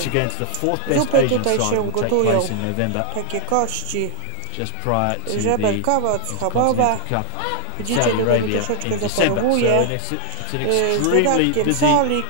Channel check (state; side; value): different; both; correlation 0.00